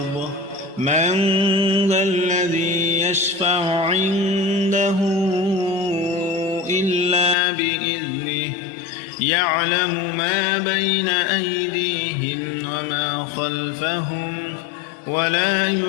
من ذا الذي يشفع عنده إلا بإذنه يعلم ما بين أيديهم وما خلفهم ولا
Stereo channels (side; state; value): right; drops out; at 7.4 s